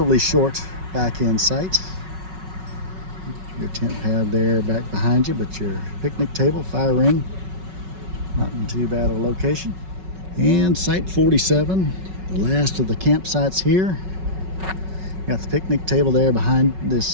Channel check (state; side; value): late; left; 5.4 ms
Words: short back end site. Your tent pad there back behind you, but your picnic table, fire ring, not in too bad of a location. And site 47, the last of the campsites here. Got the picnic table there behind